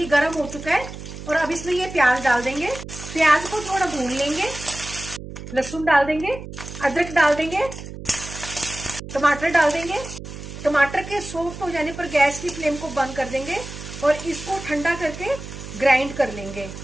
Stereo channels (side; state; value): right; noise; hum, 11 dB below the sound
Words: गर्म हो चुका है। और अब इसमें ये प्याज डाल देंगे। प्याज को थोड़ा भून लेंगे। लहसुन डाल देंगे, अदरक डाल देंगे, टमाटर डाल देंगे। टमाटर के सॉफ्ट हो जाने पर गैस की फ्लेम को बंद कर देंगे और इसको ठंडा करके ग्राइंड कर लेंगे।